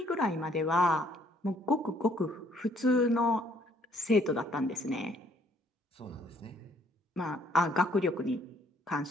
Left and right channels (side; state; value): both; normal; correlation 0.64